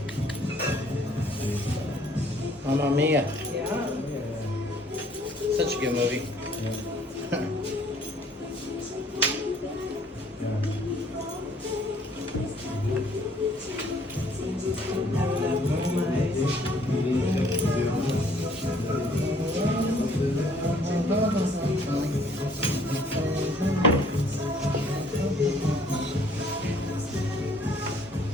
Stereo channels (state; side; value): normal; both; correlation 0.60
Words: Mamma Mia. Yeah. Such a good movie.